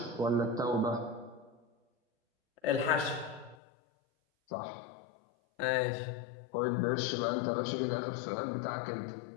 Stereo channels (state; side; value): drops out; right; at 3.6 s